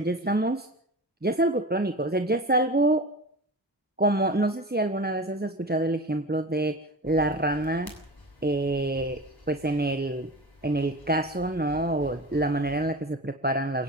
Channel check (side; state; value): both; normal; correlation 0.31